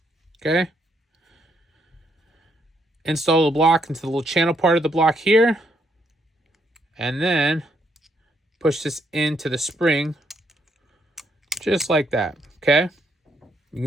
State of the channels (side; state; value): both; normal; correlation 0.74